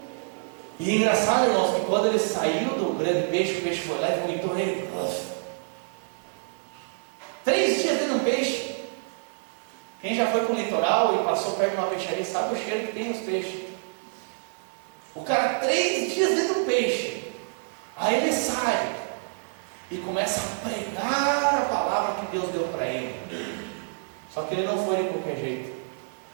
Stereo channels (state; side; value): silent; left; digital silence